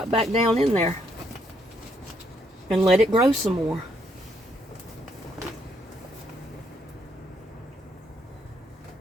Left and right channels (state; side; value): normal; both; correlation 0.72